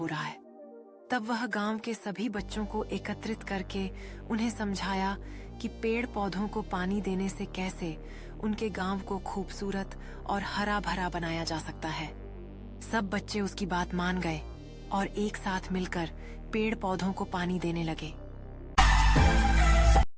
रहा है। तब वह गांव के सभी बच्चों को एकत्रित करके उन्हें समझाया कि पेड़ पौधों को पानी देने से कैसे उनके गांव को खूबसूरत और हरा भरा बनाया जा सकता है। सब बच्चे उसकी बात मान गए और एक साथ मिलकर पेड़ पौधों को पानी देने लगे।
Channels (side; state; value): both; identical; correlation 1.00